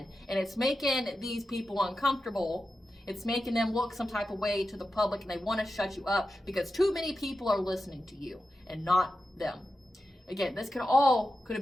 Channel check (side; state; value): both; normal; correlation 0.91